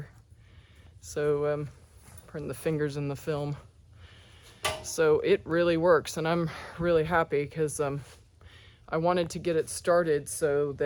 So putting the fingers in the film. So it really works, and I'm really happy because I wanted to get it started so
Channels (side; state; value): both; identical; correlation 1.00